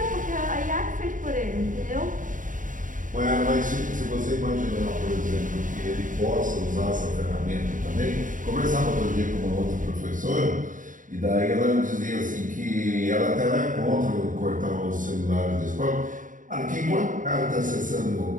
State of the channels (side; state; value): left; late; 0.38 ms